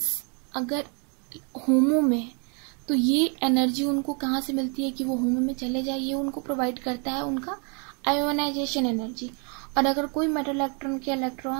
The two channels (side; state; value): left; quieter; 36.3 dB